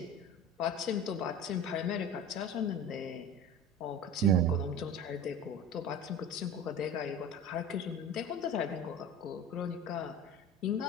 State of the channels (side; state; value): both; normal; correlation 0.34